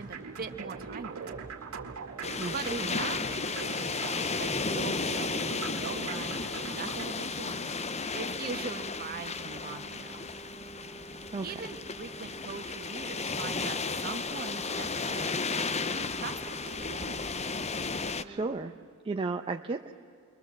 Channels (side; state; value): both; normal; correlation 0.19